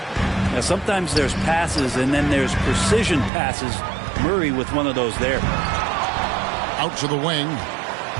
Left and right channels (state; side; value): drops out; left; at 3.3 s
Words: Now, sometimes there's passes, and then there's precision passes. Murray with one of those there. Out to the wing.